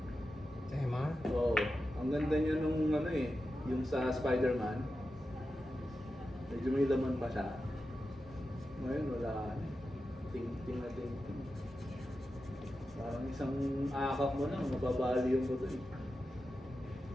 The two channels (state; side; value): normal; both; correlation 0.91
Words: Si Emma? Oo. Ang ganda niya nung ano eh, yung sa Spider-Man. Medyo may laman pa siya. Ngayon wala. Ting-ting na ting-ting. Parang isang akap mo lang, mababali yung buto eh.